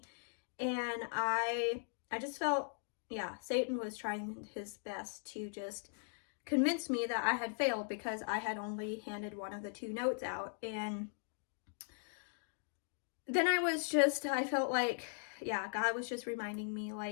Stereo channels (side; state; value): right; silent; digital silence